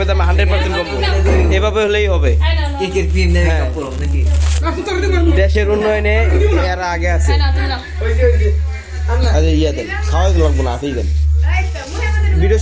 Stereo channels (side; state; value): both; identical; correlation 1.00